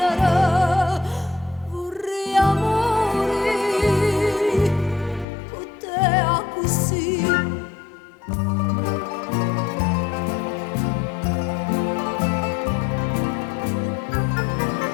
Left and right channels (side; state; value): right; drops out; at 5.2 s